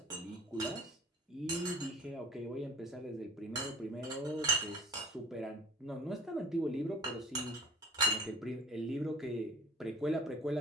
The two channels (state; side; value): normal; both; correlation 0.45